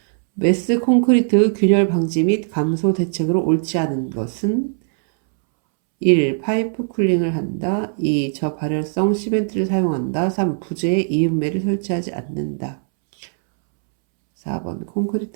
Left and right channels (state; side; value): silent; left; 66 dB below the other